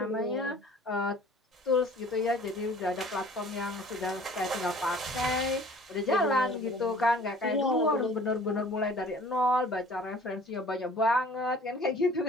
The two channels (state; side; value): normal; both; correlation 0.50